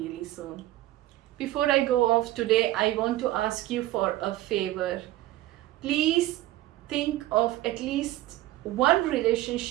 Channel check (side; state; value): left; quieter; 15.9 dB